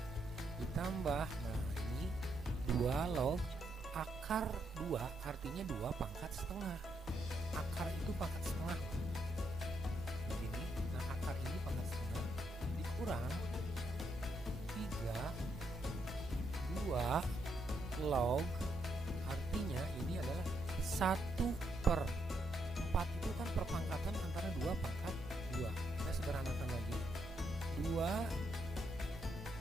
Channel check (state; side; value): normal; both; correlation 0.77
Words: ditambah, nah ini 2 log akar 2, artinya 2 pangkat setengah. Akar itu pangkat setengah begini. Nah akar ini pangkat setengah dikurang 2 log, artinya ini adalah 1/4 itu kan perpangkatan antara 2 pangkat 2. Kita sederhanakan lagi. 2